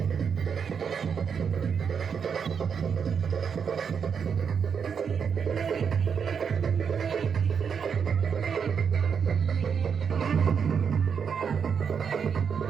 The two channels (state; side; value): quieter; left; 6.8 dB